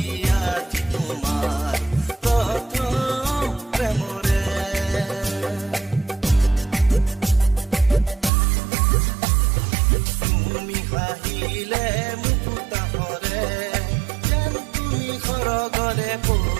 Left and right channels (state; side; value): drops out; left; at 8.3 s